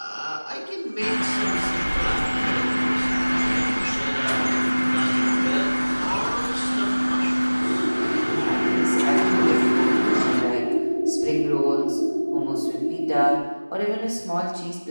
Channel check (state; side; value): inverted; both; correlation -1.00